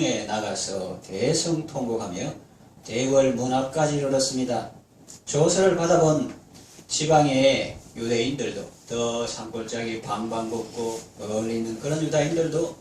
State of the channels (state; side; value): identical; both; correlation 1.00